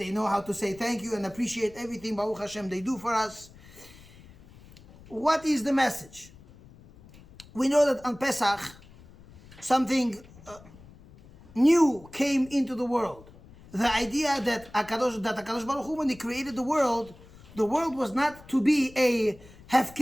know how to say thank you and appreciate everything, Baruch Hashem, they do for us. What is the message? We know that on Pesach, something new came into the world. The idea that HaKadosh Baruch Hu, when He created the world was not to be a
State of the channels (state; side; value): noise; left; rumble, 22 dB below the sound